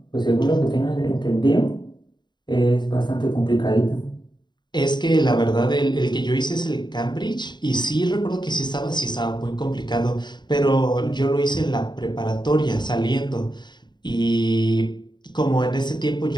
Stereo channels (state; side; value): late; right; 0.21 ms